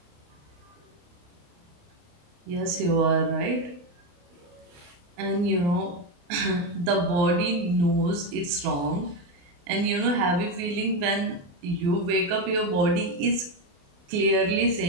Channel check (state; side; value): late; left; 28 ms